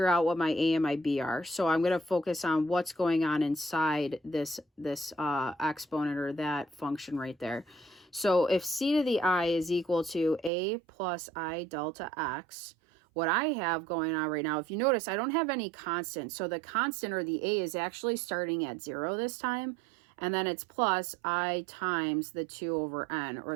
out what my a and my b are. So I'm going to focus on what's going on inside this exponent or that function right there. So if c to the I is equal to a plus I delta x, what I have going on right now, if you notice, I don't have any constant. So the constant or the a is actually starting at 0 this time. And then it's plus I times the 2 over n, or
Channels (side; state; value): left; drops out; at 10.5 s